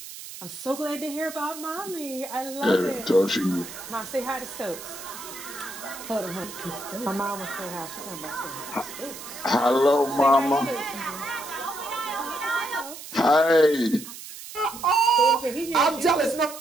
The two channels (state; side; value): noise; right; hiss, 13 dB below the sound